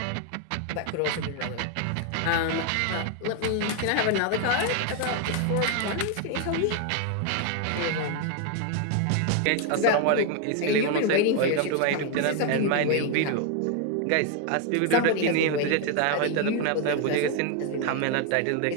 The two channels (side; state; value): both; different; correlation 0.01